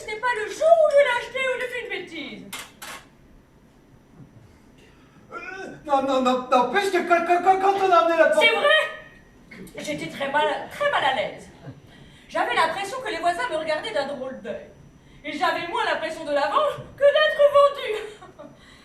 ce n'est pas le jour où je l'ai acheté ou j'ai fait une bêtise. Non, puisque quand on a amené la pancarte... C'est vrai. J'étais très mal à l'aise. J'avais l'impression que les voisins me regardaient d'un drôle d'œil. Et j'avais moins l'impression de la vendre que d'être vendue.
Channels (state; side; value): identical; both; correlation 1.00